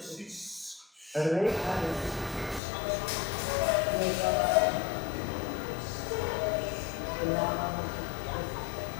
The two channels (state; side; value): drops out; right; at 2.6 s